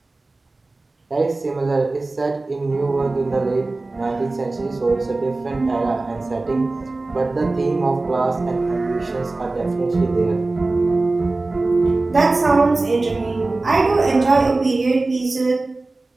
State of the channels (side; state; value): left; quieter; 3.2 dB